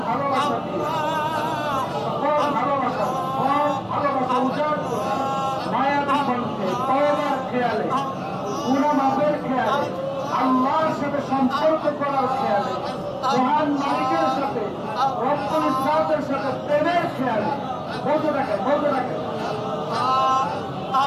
ভালোবাসা দিয়ে, সকল ভালোবাসা, সব ভালোবাসা উজাড় করে মায়াবী কণ্ঠে, তওবার খেয়ালে, গুনাহ মাফের খেয়ালে, আল্লাহর সাথে সম্পর্ক করার খেয়ালে, মহান মালিকের সাথে, রব্বুল ইজ্জাতের সাথে প্রেমের খেয়ালে বলতে থাকেন, বলতে থাকেন।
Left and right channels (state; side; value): identical; both; correlation 1.00